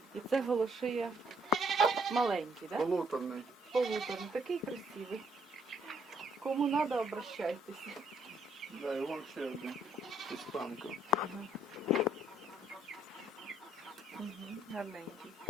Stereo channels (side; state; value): both; normal; correlation 0.68